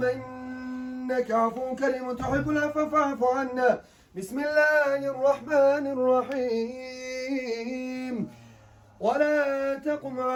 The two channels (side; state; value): both; identical; correlation 1.00